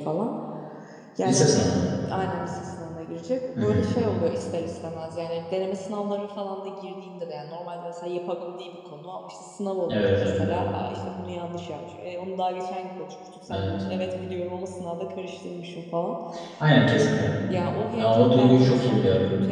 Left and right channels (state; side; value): identical; both; correlation 1.00